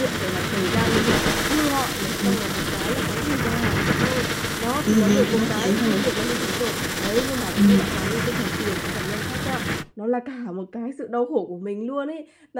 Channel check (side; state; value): both; identical; correlation 1.00